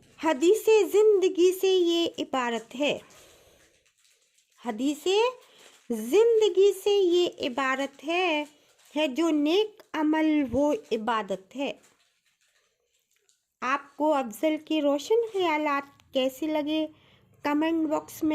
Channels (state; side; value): identical; both; correlation 1.00